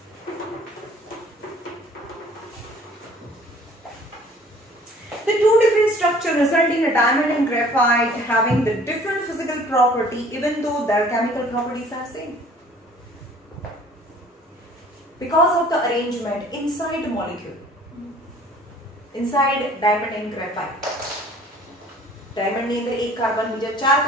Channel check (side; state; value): both; normal; correlation 0.52